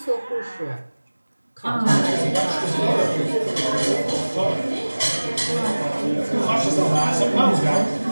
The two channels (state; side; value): inverted; both; correlation -1.00